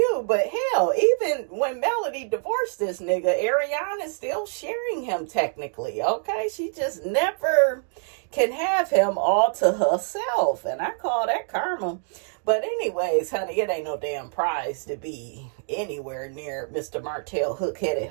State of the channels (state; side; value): silent; left; 58 dB below the other